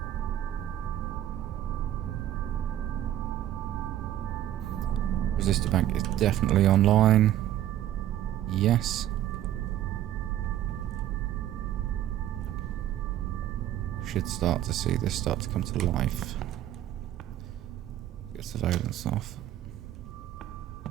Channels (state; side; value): quieter; left; 12.2 dB